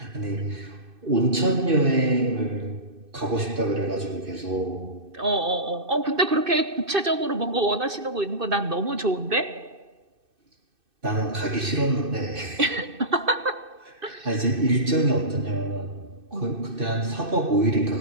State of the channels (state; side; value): late; left; 2.6 ms